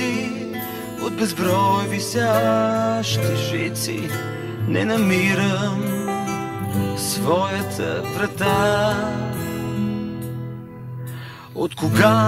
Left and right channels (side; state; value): both; identical; correlation 1.00